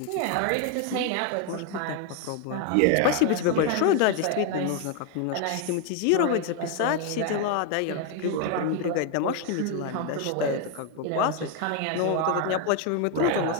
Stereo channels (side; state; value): both; different; correlation 0.01